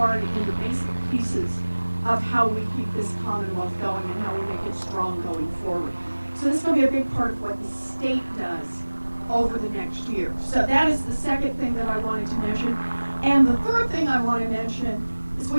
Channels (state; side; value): inverted; both; correlation -1.00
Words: in the basic pieces of how we keep this Commonwealth going and how we make it strong going forward. So this is going to be a big part of what the state does over the next year. So that is the second thing that I wanted to mention. And the third thing I want to mention is